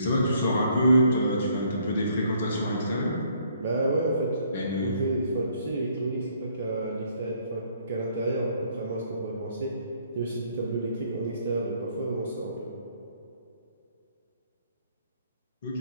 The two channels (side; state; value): both; inverted; correlation -0.65